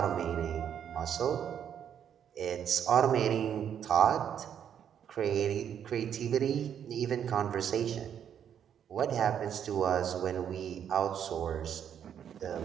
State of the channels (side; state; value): left; quieter; 8.9 dB